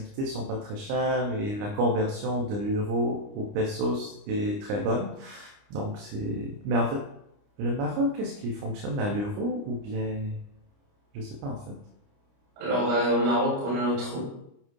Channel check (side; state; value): left; late; 29 ms